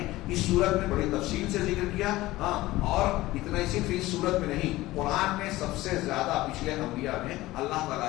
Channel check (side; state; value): right; quieter; 17.9 dB